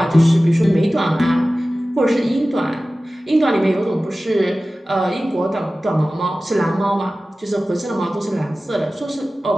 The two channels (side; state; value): both; normal; correlation 0.96